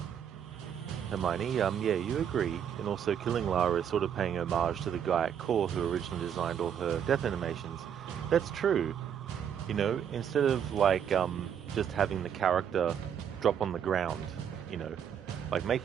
Hermione, yeah, you agree. And also killing Lara is sort of paying homage to the guy at Core who originally designed all her death animations. That's true. You know, instead of like just having the character drop on the ground, you know, like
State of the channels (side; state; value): left; quieter; 8.6 dB